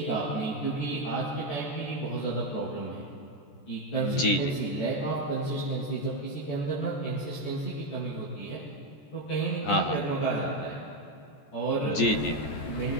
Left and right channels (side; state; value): right; late; 14 ms